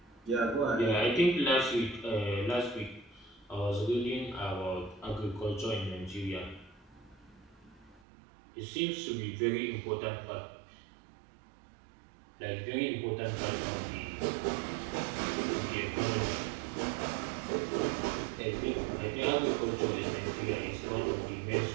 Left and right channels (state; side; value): drops out; left; at 8.0 s